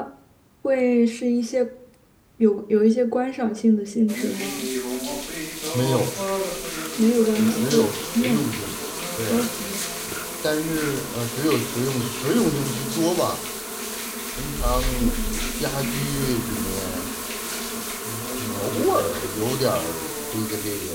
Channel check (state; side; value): identical; both; correlation 1.00